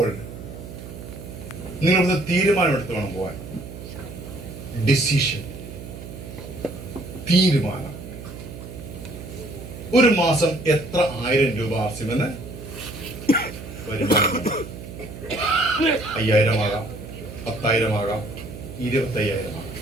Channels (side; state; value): right; noise; hum, 12 dB below the sound